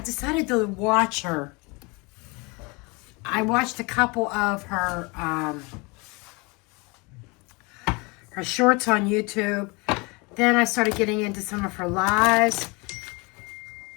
to watch her. I watched a couple of her shorts on YouTube. Then I started getting into some of her lives.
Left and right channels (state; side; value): quieter; right; 27.8 dB